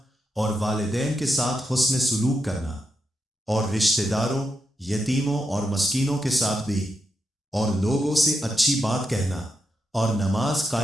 اور والدین کے ساتھ حسن سلوک کرنا، اور رشتہ داروں، یتیموں اور مسکینوں کے ساتھ بھی، اور لوگوں سے اچھی بات کہنا، اور نماز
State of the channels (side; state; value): both; normal; correlation 0.84